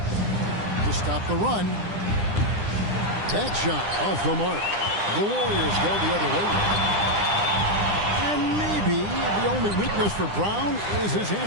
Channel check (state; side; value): late; left; 9.9 ms